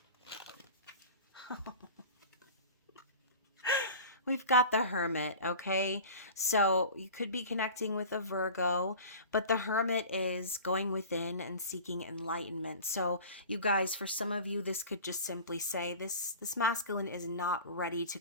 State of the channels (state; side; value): inverted; both; correlation -0.38